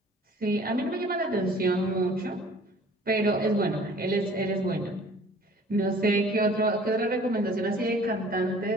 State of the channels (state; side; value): normal; both; correlation 0.50